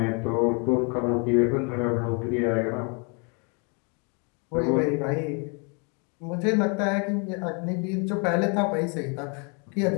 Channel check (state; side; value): quieter; right; 35.1 dB